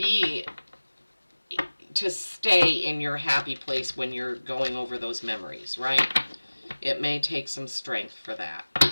stay in your happy place when you're going over those memories, right? It may take some strength for that.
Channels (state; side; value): inverted; both; correlation -1.00